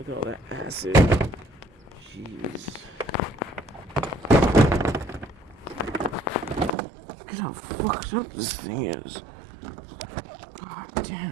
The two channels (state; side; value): drops out; left; at 6.8 s